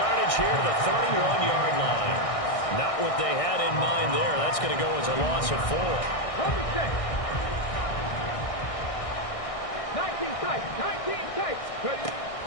here to the 31-yard line. Not what they had in mind there. That's going to go as a loss of 4. 19 tight.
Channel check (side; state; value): right; late; 1.6 ms